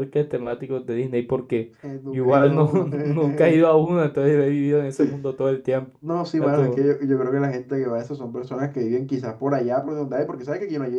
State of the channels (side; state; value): both; identical; correlation 1.00